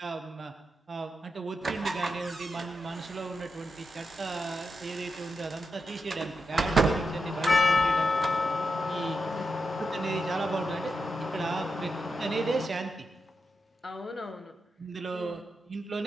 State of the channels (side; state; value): both; normal; correlation 0.87